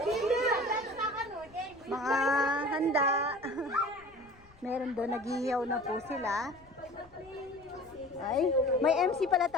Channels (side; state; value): left; noise; rumble, 27 dB below the sound